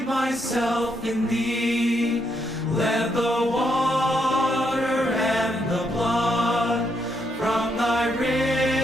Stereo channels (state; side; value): normal; both; correlation 0.77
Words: myself in thee. Let the water and the blood from thy